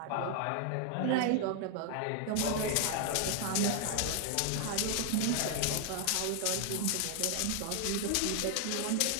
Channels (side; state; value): both; different; correlation 0.00